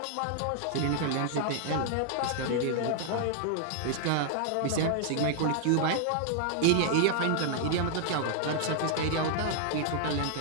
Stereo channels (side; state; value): both; different; correlation -0.01